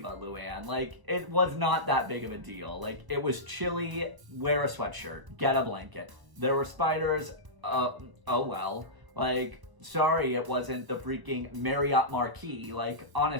Luann. Like, it was not that big of a deal. Like, it was chilly, wear a sweatshirt, get a blanket. There were spiders, oh well. Like, sorry it wasn't the freaking Marriott Marquis. Like,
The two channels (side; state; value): left; late; 1.0 ms